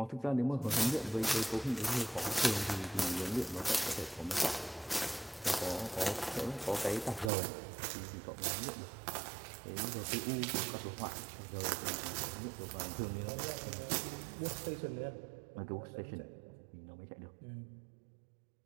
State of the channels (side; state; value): left; drops out; at 7.3 s